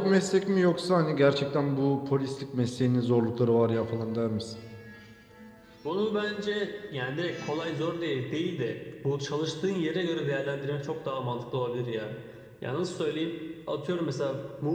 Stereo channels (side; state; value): both; identical; correlation 1.00